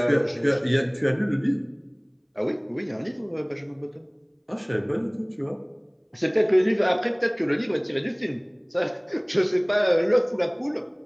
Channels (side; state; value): both; identical; correlation 1.00